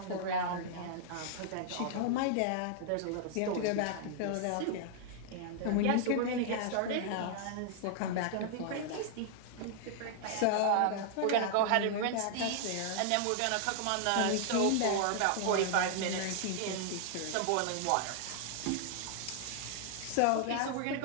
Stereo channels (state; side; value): different; both; correlation -0.01